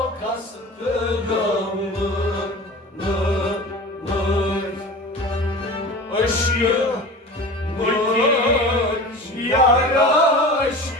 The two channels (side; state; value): both; normal; correlation 0.35